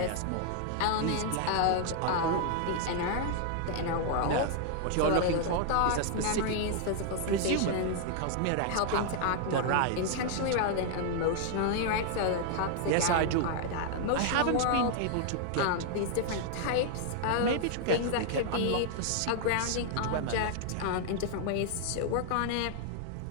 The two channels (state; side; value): different; both; correlation 0.00